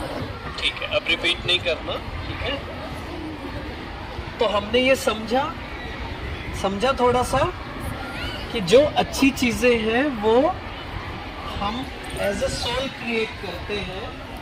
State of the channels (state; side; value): identical; both; correlation 1.00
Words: ठीक है, अब रिपीट नहीं करना, ठीक है। तो हमने ये समझा थोड़ा सा कि जो अच्छी चीजें हैं वो हम एज अ सोल क्रिएट करते हैं।